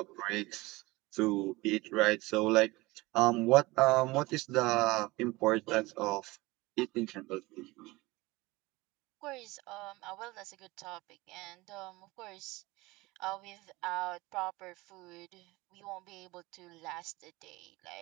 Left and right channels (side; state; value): left; quieter; 21.4 dB